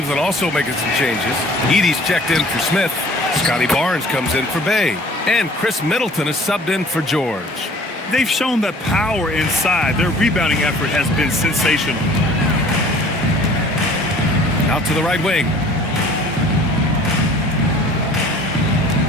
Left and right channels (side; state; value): both; normal; correlation 0.51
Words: also making some changes. Edie's checked in for Smith. Scotty Barnes comes in for Bay. And Chris Middleton is subbed in for George. They've shown that power inside. Their rebounding effort has been sensational. Out to the right wing.